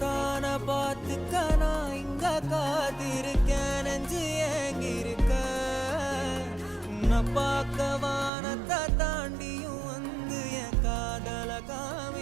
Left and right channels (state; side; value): drops out; left; at 8.3 s